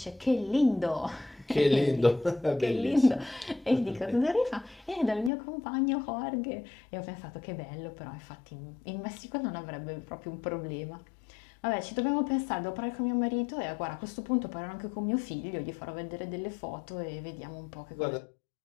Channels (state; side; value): drops out; right; at 5.3 s